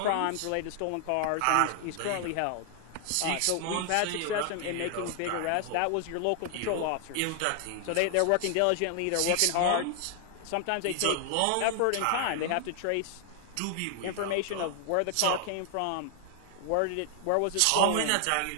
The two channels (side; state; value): both; different; correlation 0.00